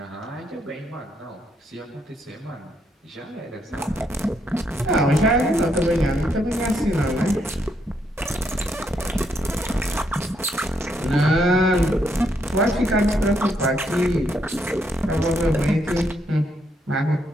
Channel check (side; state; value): both; normal; correlation 0.76